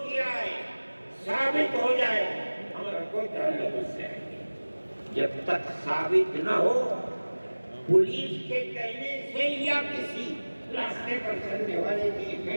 کیا ہے ثابت ہو جائے، ہمارا کوئی تعلق اس سے نہیں۔ جب تک ثابت نہ ہو، پولیس کے کہنے سے یا کسی راستے پر چلنے والے کے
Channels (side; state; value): both; inverted; correlation -1.00